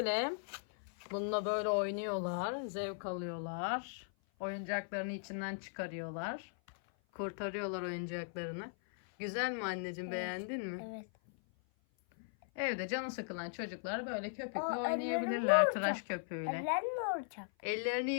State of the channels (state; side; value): silent; right; 52 dB below the other